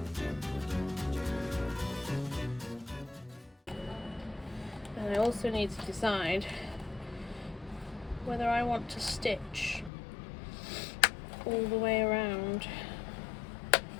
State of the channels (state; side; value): drops out; right; at 9.9 s